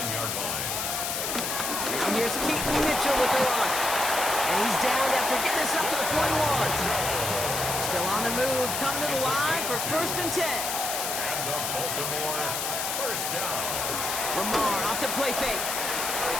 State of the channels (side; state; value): left; noise; hiss, 2 dB below the sound